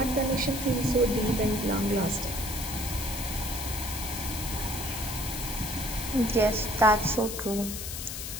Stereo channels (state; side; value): noise; left; hiss, 6 dB below the sound